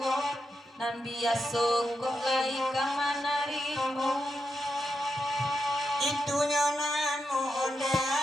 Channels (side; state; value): both; normal; correlation 0.86